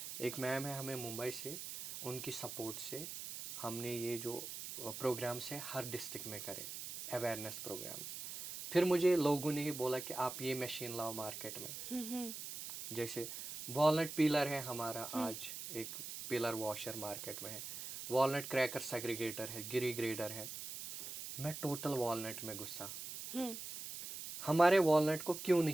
एक मैम है हमें मुंबई से, उनकी सपोर्ट से हमने ये जो प्रोग्राम्स हैं हर डिस्ट्रिक्ट में करे, अवेयरनेस प्रोग्राम्स। फिर मुझे लोगों ने ही बोला कि आप ये मशीन लाओ मार्केट में। जैसे वॉलनट पीलर है हमारा, आज एक पिलर वॉशर मार्केट में है, वॉलनट क्रैकर सेग्रीगेटर है, गिरी ग्रेडर है। मैं टोटल वॉलनट में गुस्सा, हमारे वॉलनट को क्यों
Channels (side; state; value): right; noise; hiss, 8 dB below the sound